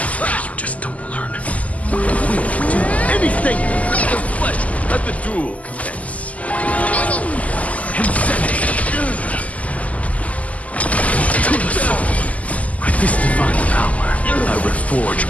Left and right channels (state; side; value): late; right; 0.072 ms